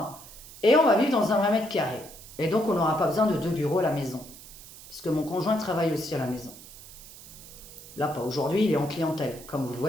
et on va vivre dans un 20 mètres carrés. Et donc, on n'aura pas besoin de 2 bureaux à la maison. Parce que mon conjoint travaille aussi à la maison. Là, pas aujourd'hui, il est en clientèle, comme vous le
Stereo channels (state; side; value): noise; right; hiss, 17 dB below the sound